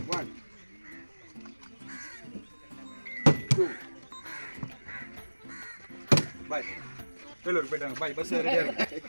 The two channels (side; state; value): both; inverted; correlation -1.00